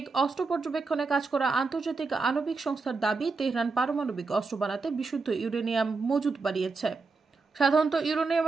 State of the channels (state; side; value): quieter; left; 4.2 dB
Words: অস্ত্র পর্যবেক্ষণে কাজ করা আন্তর্জাতিক আণবিক সংস্থার দাবি, তেহরান পারমাণবিক অস্ত্র বানাতে বিশুদ্ধ ইউরেনিয়াম মজুদ বাড়িয়েছে। সাধারণত